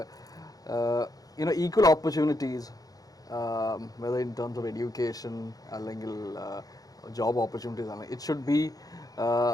equal opportunities whether in terms of education അല്ലെങ്കിൽ ജോബ് ഓപ്പർച്യൂണിറ്റീസ് ആണ്. It should be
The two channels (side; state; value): right; late; 0.18 ms